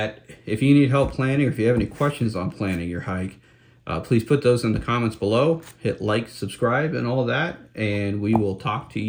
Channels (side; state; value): both; identical; correlation 1.00